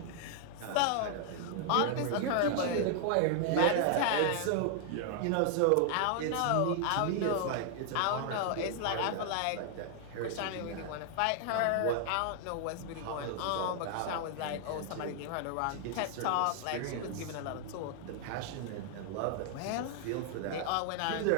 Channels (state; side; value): different; both; correlation 0.00